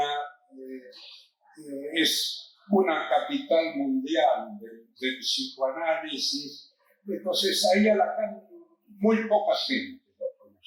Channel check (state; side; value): identical; both; correlation 1.00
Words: es una capital mundial del psicoanálisis. Entonces ahí a Lacan muy poca gente lo